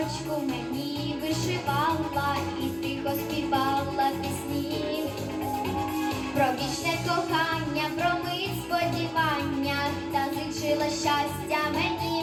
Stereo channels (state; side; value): identical; both; correlation 1.00